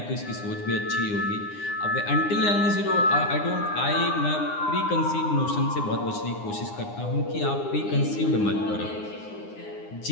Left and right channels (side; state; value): right; late; 9.7 ms